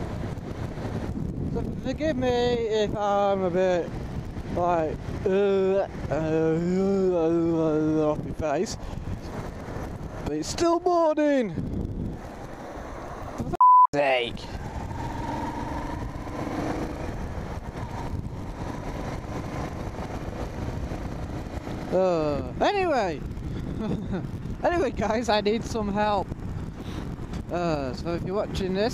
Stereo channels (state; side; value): identical; both; correlation 1.00